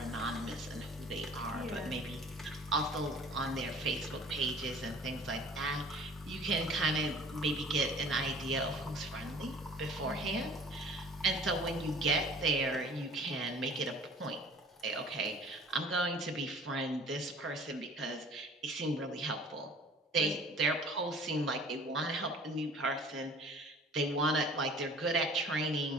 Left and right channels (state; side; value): normal; both; correlation 0.49